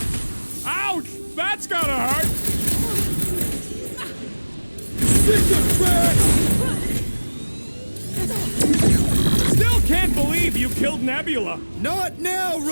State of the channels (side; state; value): both; inverted; correlation -1.00